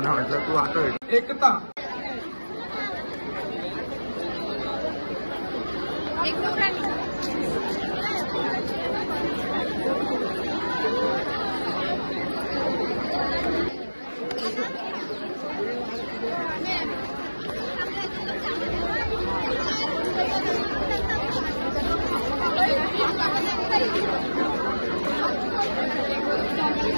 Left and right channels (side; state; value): both; inverted; correlation -1.00